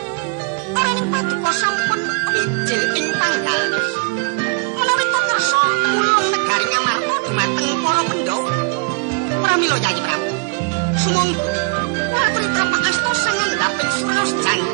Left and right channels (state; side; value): quieter; left; 34.1 dB